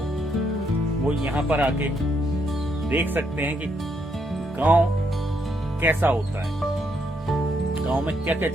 वो यहाँ पर आके देख सकते हैं कि गांव कैसा होता है, गांव में क्या क्या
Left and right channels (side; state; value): both; normal; correlation 0.76